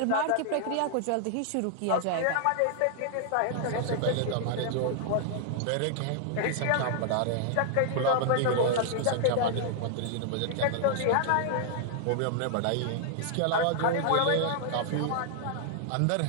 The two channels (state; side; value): different; both; correlation 0.00